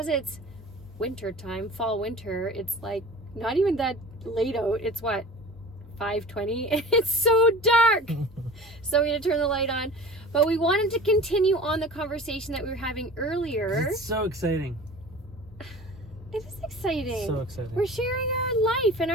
it's winter time, fall, winter, it's like not even that late out. It's what? 5:20. It's so dark. So we had to turn the light on. But we wanted to continue on the conversation that we were having earlier. It's so exciting. It is exciting. So exciting. We're sharing our life and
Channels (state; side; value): normal; both; correlation 0.39